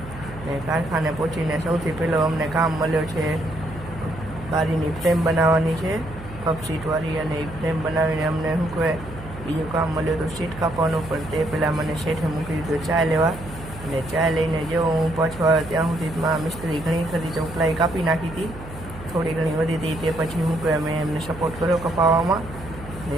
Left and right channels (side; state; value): right; noise; hum, 14 dB below the sound